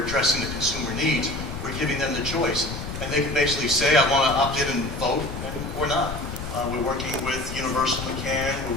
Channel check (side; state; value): left; noise; rumble, 8 dB below the sound